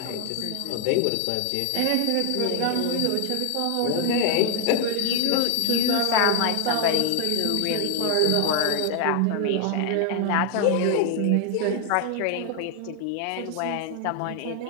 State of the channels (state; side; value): different; both; correlation 0.01